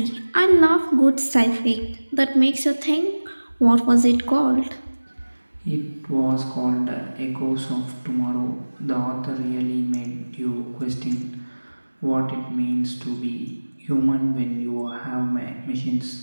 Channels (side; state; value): both; inverted; correlation -1.00